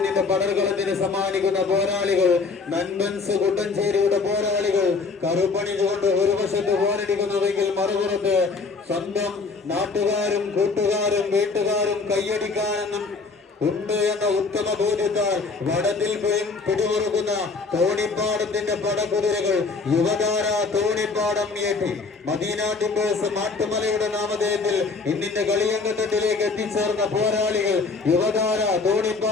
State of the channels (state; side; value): quieter; right; 4.3 dB